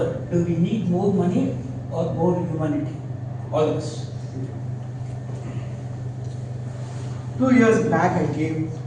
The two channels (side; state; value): both; identical; correlation 1.00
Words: do we need more money or more humanity? All of us. 2 years back, I gave